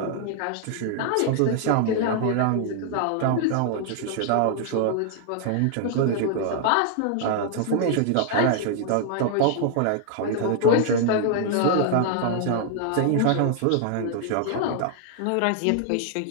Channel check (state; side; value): different; both; correlation 0.00